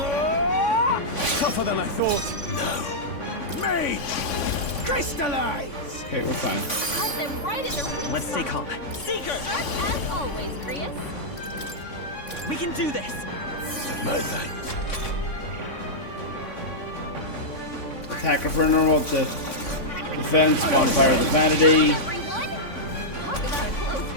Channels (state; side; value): late; right; 3.5 ms